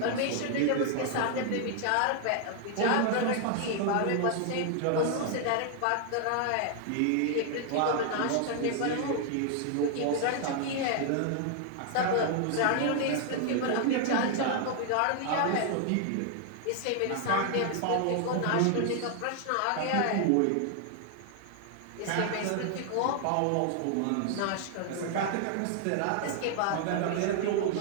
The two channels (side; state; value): both; different; correlation 0.00